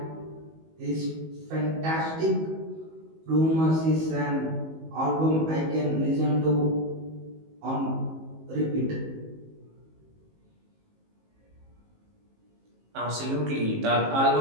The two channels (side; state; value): left; late; 19 ms